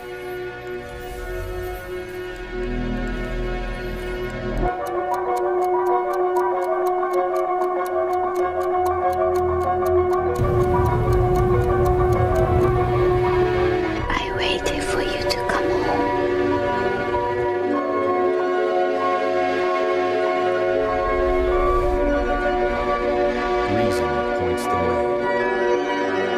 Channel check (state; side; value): identical; both; correlation 1.00